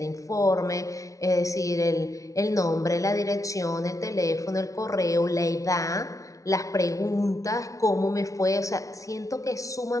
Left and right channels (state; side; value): late; right; 0.16 ms